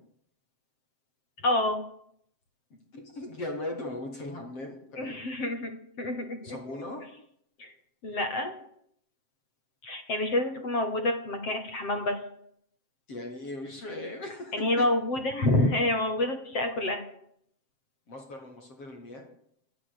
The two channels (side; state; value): right; late; 7.6 ms